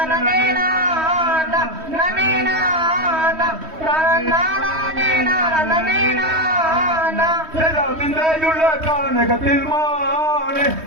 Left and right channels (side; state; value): left; late; 3.2 ms